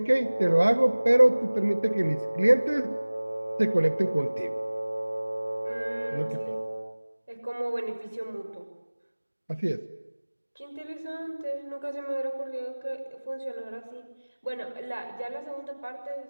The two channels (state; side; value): inverted; both; correlation -1.00